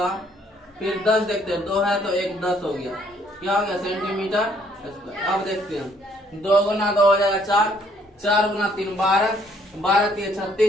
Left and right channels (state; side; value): normal; both; correlation 0.65